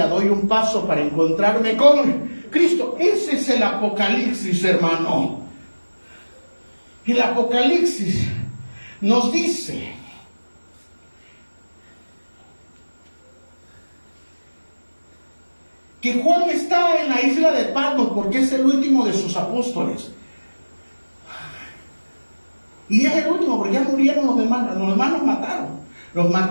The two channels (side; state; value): both; inverted; correlation -1.00